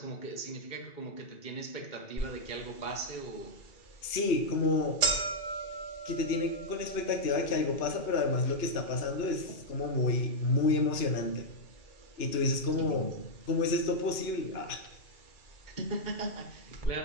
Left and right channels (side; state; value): right; late; 2.9 ms